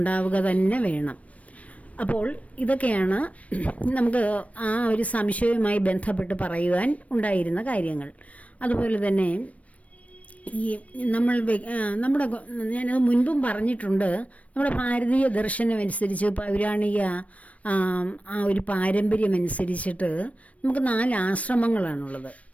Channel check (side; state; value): right; late; 0.066 ms